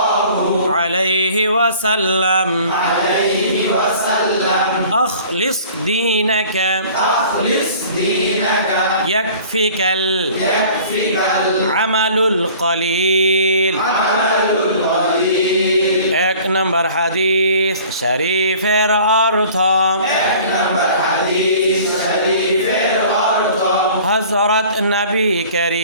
عليه وسلم أخلص دينك يكفيك العمل القليل। 1 নম্বর হাদিস শরীফের অর্থ হযরত নবী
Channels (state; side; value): inverted; both; correlation -0.48